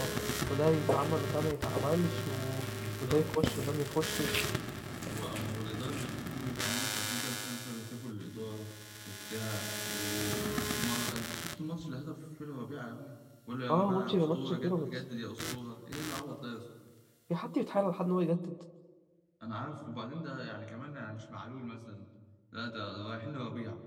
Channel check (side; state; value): both; identical; correlation 1.00